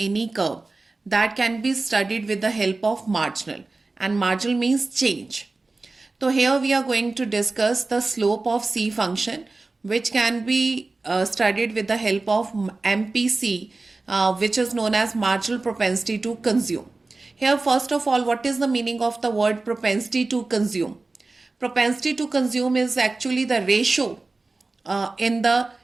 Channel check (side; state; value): left; quieter; 3.5 dB